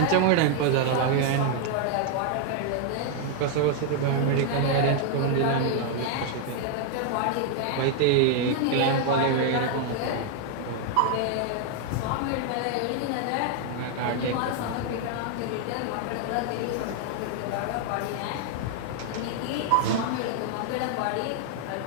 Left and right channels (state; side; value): different; both; correlation 0.00